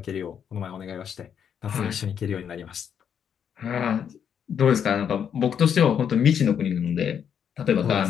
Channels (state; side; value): quieter; right; 8.1 dB